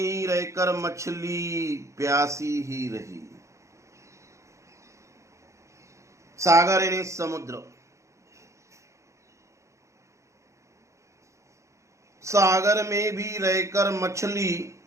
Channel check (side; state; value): left; late; 0.14 ms